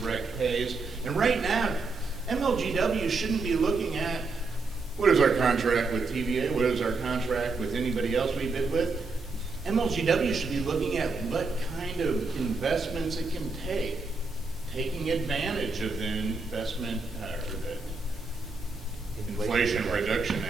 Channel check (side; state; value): left; quieter; 3.9 dB